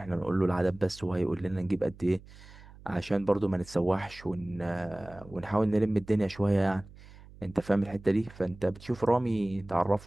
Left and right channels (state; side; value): noise; right; hum, 20 dB below the sound